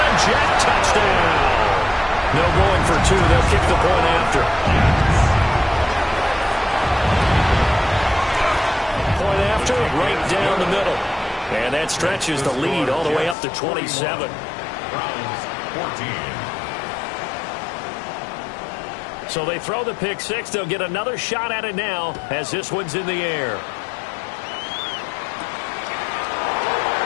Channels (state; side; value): drops out; right; at 13.4 s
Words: Jet touchdown. No going for 2. They'll kick the point after. Point after, right down the middle. And that stretches the lead all the way up to 27. Browns 14. So they throw the pick 6. They'll get another shot at it now as this one's in the air.